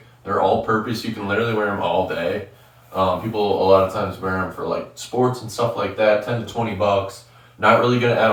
They're all purpose. You can literally wear them all day. People a lot of times wear them for like sports and stuff like that, 10 to 20 bucks. Not really going to add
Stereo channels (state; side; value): identical; both; correlation 1.00